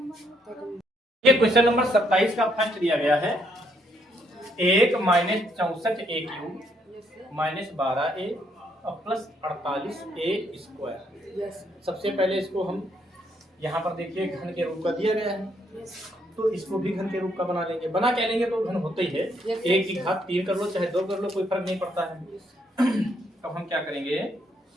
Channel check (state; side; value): normal; both; correlation 0.72